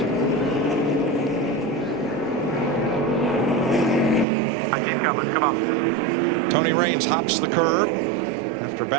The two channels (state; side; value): drops out; left; at 4.2 s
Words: Come on. Tony Raines hops the curb after